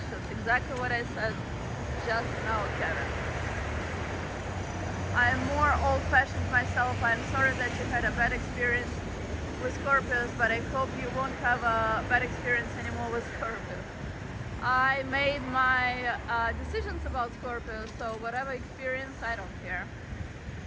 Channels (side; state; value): both; identical; correlation 1.00